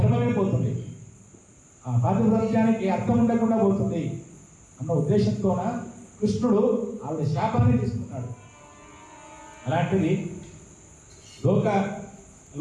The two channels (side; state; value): both; identical; correlation 1.00